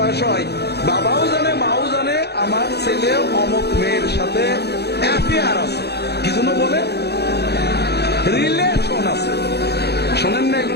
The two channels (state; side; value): late; right; 0.48 ms